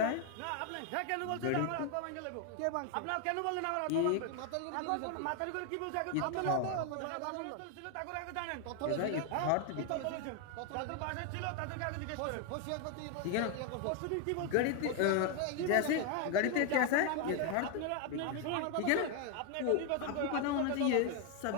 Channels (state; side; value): different; both; correlation 0.01